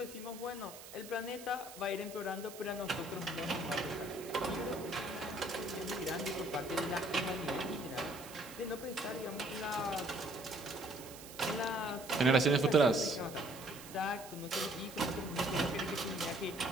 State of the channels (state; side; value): noise; right; hiss, 15 dB below the sound